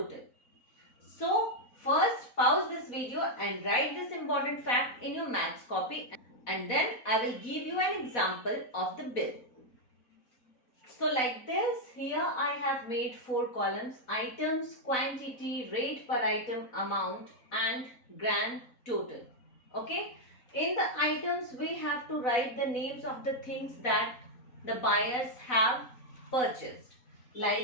So first pause this video and write this important fact in your maths copy, and then I will give you an example of the bill. So like this, here I have made 4 columns: items, quantity, rate per item, amount and grand total. Okay. In the items, we have to write the names of the things that the buyers have purchased,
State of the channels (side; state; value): right; late; 4.1 ms